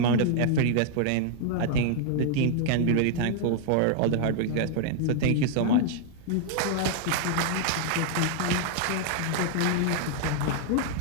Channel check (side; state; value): both; different; correlation 0.00